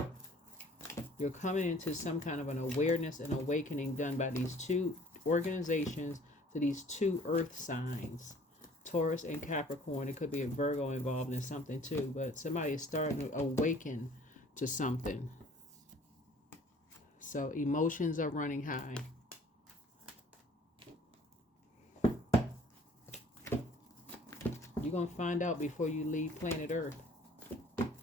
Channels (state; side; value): normal; both; correlation 0.53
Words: You're coming into some kind of an awareness and awakening done by these two organizations to these two earth signs, Taurus and Capricorn. It could be a Virgo involved in something too, but somebody is starting to awaken to something. So emotions are running high. You're going to find out before you leave planet Earth